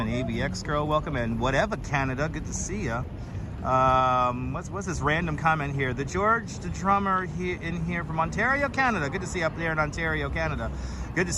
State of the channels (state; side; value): identical; both; correlation 1.00